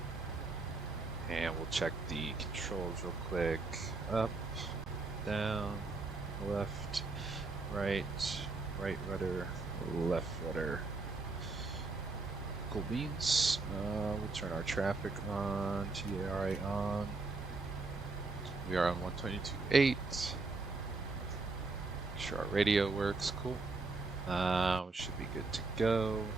And we'll check the controls real quick. Up, down, left, right rudder, left rudder. Cool beans. We'll turn our traffic on, TARA on. We are on 122.8. Make sure our radio works. Cool. We should be good to go.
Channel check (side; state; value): left; quieter; 3.7 dB